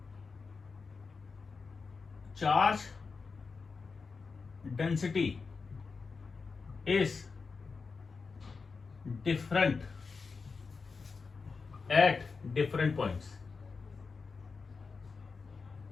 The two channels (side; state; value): right; quieter; 4.7 dB